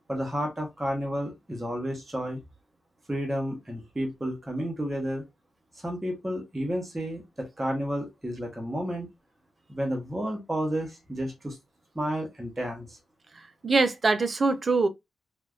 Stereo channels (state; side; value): normal; both; correlation 0.90